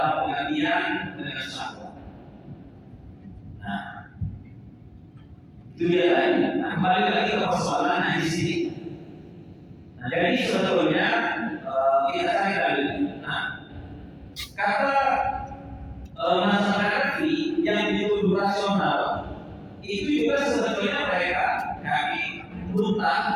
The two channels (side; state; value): both; identical; correlation 1.00